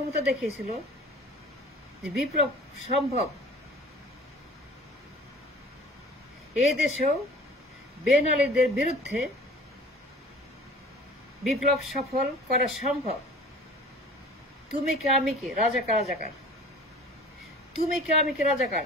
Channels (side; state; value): both; normal; correlation 0.45